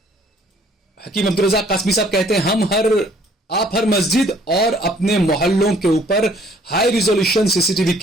हकीम अब्दुल रज़ाक कासमी साहब कहते हैं आप हर मस्जिद और अपने मोहल्लों के ऊपर हाई रिजोल्यूशन सीसीटीवी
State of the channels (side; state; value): both; normal; correlation 0.59